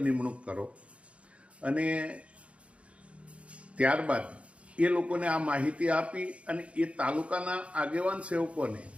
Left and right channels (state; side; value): late; left; 0.062 ms